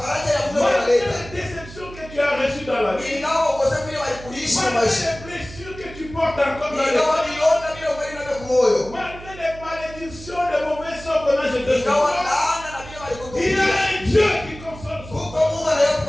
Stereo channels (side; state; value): right; noise; hum, 16 dB below the sound